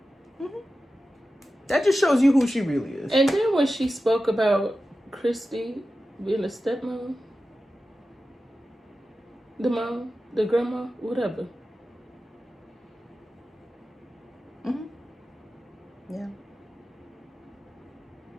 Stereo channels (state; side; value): normal; both; correlation 0.93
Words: That just shows you who she really is. And then when she spoke about Christy being a stepmom, the mom, the grandma, whatever. Yeah.